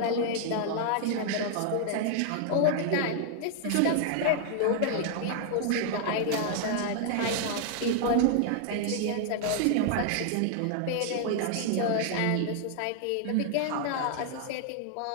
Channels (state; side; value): different; both; correlation 0.00